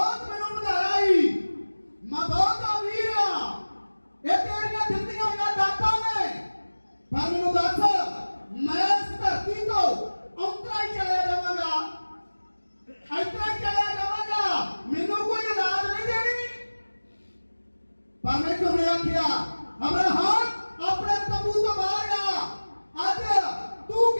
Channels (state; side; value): inverted; both; correlation -1.00